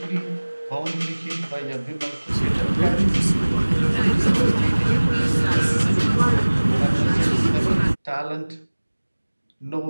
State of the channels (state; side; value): inverted; both; correlation -1.00